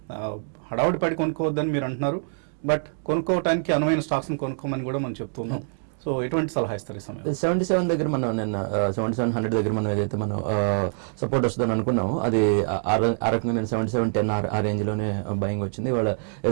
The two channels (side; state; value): left; silent; digital silence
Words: హడావుడి పడి కొనుక్కోవద్దని మీరు అంటున్నారు, బట్ కొనుక్కోవడానికి అనువైన స్టాక్స్ని కొనుక్కోమని కూడా మనం చెప్తున్నాం. సో ఎటువంటి సలహా ఇస్తారు ఈ సమయంలో? 77 దగ్గర మనం నిన్న 7700 దగ్గర మనం ఏదైతే మనం సపోర్ట్ వస్తుందని అనుకున్నాము, అది ఆ రకంగా నేను 7710 ఆ రేంజ్ లోనే బయింగ్ వచ్చింది. ఇవాళ